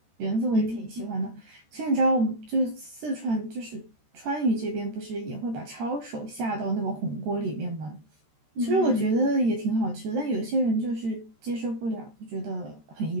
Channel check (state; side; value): late; left; 13 ms